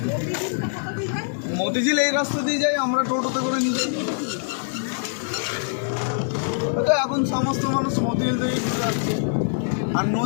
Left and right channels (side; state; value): right; silent; digital silence